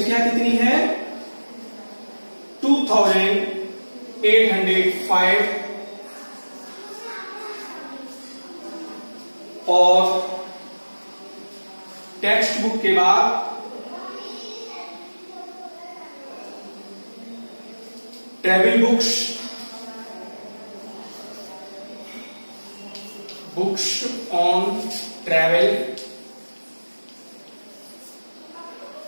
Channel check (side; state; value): both; inverted; correlation -1.00